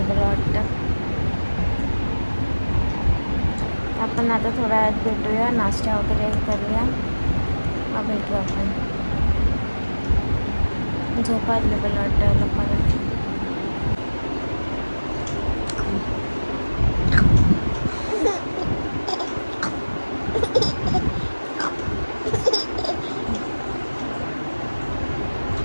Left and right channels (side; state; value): both; inverted; correlation -1.00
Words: मला वाटतं. आपण आता थोड्या वेळात भेटूया, नाश्ता वगैरे करूया, मग भेटू आपण. झोपा आली मला वाटतं लोकांना.